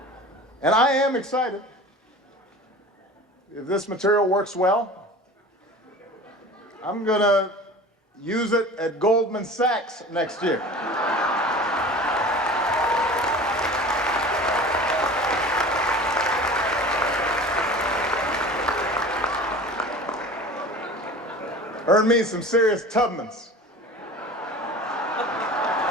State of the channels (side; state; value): both; normal; correlation 0.39